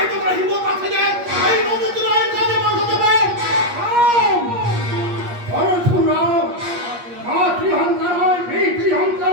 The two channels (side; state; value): left; late; 8.5 ms